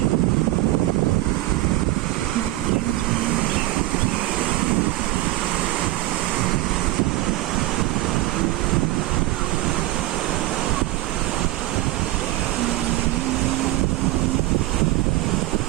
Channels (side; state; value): left; quieter; 17.1 dB